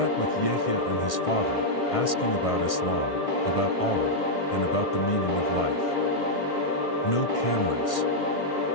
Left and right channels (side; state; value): right; late; 1.6 ms